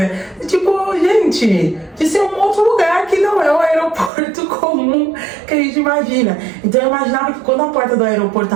tipo, gente, de ser um outro lugar que não é o aeroporto comum que a gente imagina. Então eu imaginava que quando a porta do aeroporto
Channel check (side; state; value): left; drops out; at 4.1 s